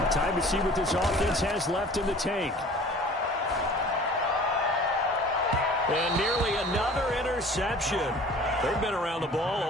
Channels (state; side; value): normal; both; correlation 0.46